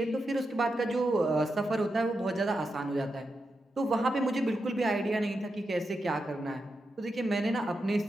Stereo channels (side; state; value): both; normal; correlation 0.87